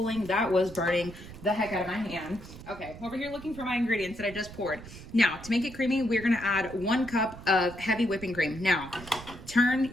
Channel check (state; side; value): noise; right; rumble, 15 dB below the sound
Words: that was burning the heck out of my hand. Okay, over here looking for my ingredients that I just poured. Now, to make it creamy, we're gonna add 1 cup of heavy whipping cream. Now, turn